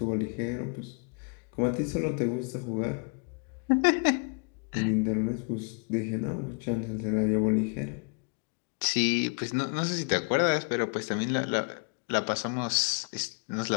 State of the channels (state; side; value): quieter; right; 36.3 dB